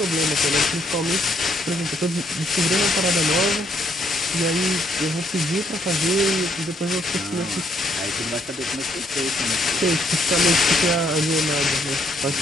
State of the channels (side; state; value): both; normal; correlation 0.71